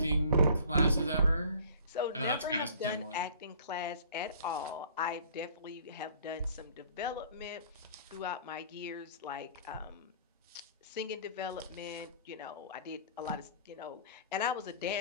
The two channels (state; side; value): inverted; both; correlation -0.50